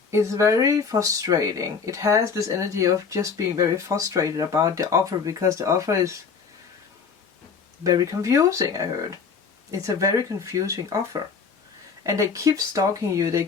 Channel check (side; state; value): right; quieter; 5.7 dB